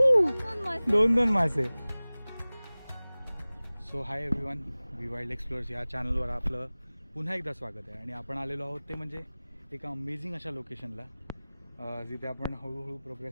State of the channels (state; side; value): inverted; both; correlation -0.99